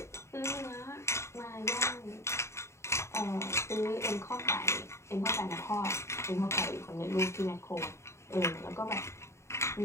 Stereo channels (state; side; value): late; right; 0.13 ms